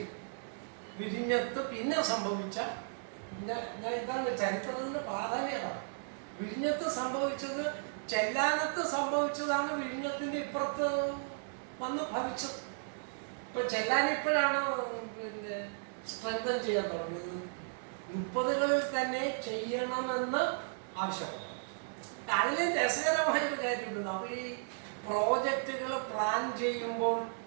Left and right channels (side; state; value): left; silent; digital silence